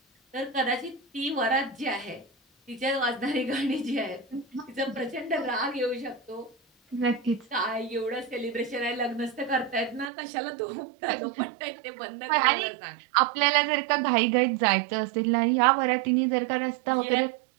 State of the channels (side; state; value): left; drops out; at 10.1 s